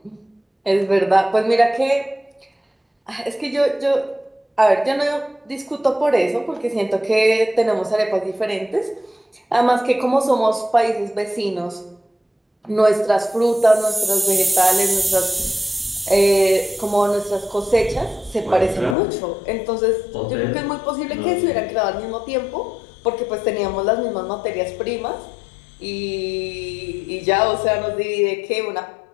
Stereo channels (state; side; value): drops out; right; at 18.9 s